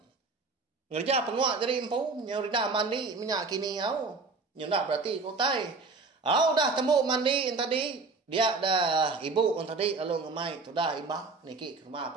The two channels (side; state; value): left; quieter; 4.0 dB